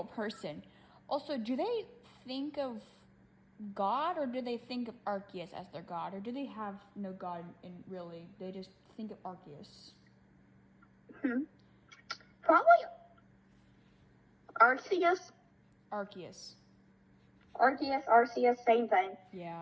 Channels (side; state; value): both; identical; correlation 1.00